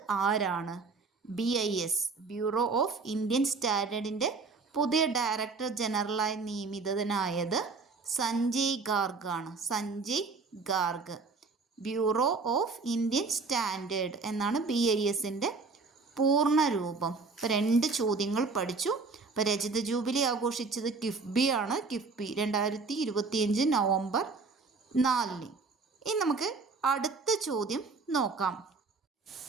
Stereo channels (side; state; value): left; quieter; 4.3 dB